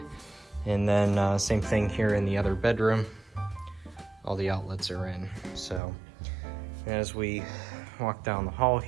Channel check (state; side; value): drops out; left; at 5.8 s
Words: And then same thing here in the other bedroom, all the outlets are in. So as we walk down the hall